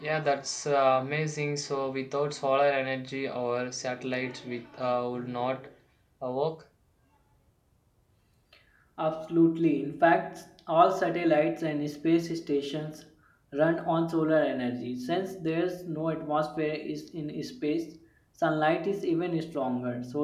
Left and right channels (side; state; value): both; identical; correlation 1.00